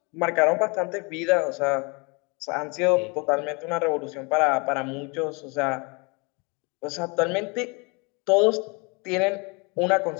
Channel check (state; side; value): quieter; right; 30.0 dB